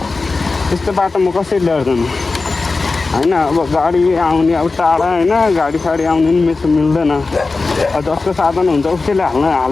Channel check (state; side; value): quieter; right; 3.8 dB